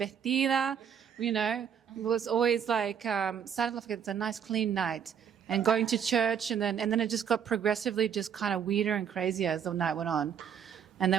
you know, it was always like, started off like it's a nice clean night and going to church. And then it just got progressively just kind of weirder and crazier as the night went on. And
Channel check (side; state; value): left; quieter; 7.9 dB